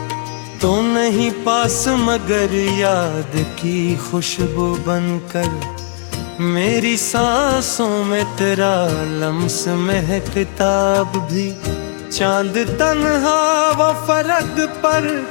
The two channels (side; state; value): right; silent; digital silence